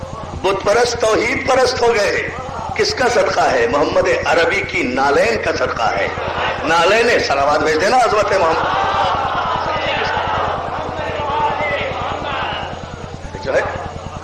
بت پرست توحید پرست ہو گئے۔ کس کا صدقہ ہے؟ محمد عربی کی نالین کا صدقہ ہے۔ نالین صلوات بھیج دینا عظمت محمد جو ہے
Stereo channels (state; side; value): identical; both; correlation 1.00